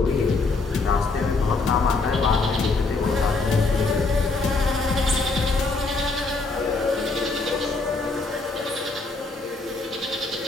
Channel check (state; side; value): quieter; right; 3.7 dB